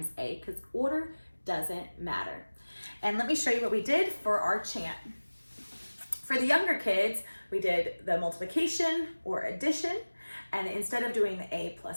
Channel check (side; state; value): both; inverted; correlation -1.00